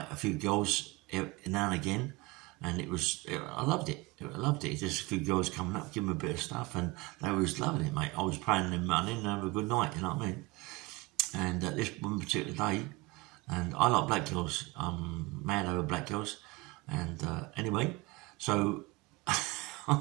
a few girls now and again, and I loved it. I loved it. Just a few girls coming up, giving me a bit of stuff, and they was loving it, mate. I was paying them money and have a good night, you know what I mean? And this one particular day, and I like black girls. I'm mad over black girls, and anyway, so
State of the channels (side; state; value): left; quieter; 23.1 dB